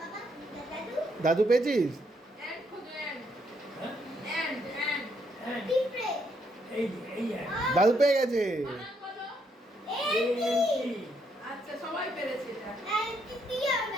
দাদু পেয়েছিস এন্ড খুঁজো এন্ড দাদু পেয়ে গেছে বানান বলো আচ্ছা সবাই পেরেছে এটা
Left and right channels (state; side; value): normal; both; correlation 0.74